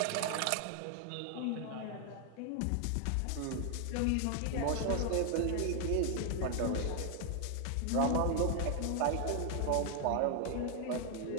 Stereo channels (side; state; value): both; different; correlation 0.00